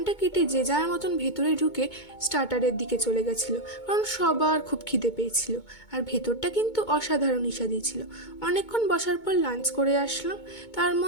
কেটে যে যার মতন ভেতরে ঢুকে স্টার্টারের দিকে চলে গেছিলো, কারণ সবার খুব খিদে পেয়েছিল। আর ভেতরটা কিন্তু অসাধারণ ইস্বাদি ছিল। অনেকক্ষণ বসার পর লাঞ্চ করে আসলাম। তার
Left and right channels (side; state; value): right; late; 2.2 ms